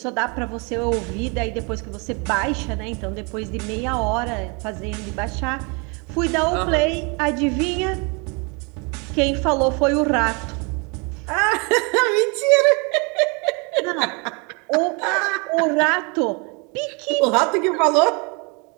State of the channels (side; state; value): left; quieter; 32.0 dB